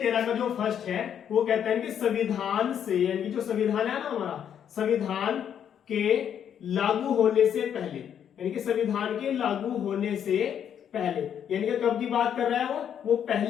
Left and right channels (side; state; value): right; quieter; 8.9 dB